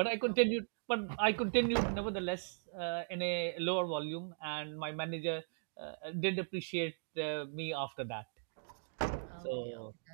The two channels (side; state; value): left; silent; digital silence